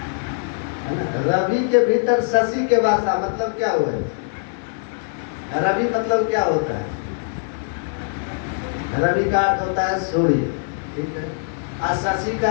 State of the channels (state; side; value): silent; right; 60 dB below the other